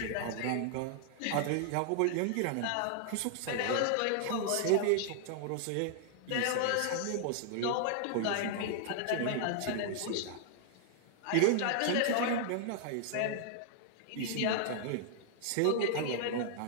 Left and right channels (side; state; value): both; different; correlation -0.01